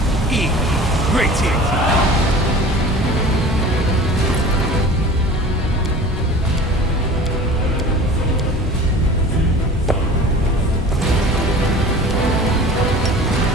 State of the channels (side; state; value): both; normal; correlation 0.41